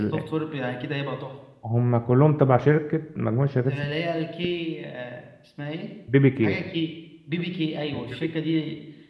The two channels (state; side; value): identical; both; correlation 1.00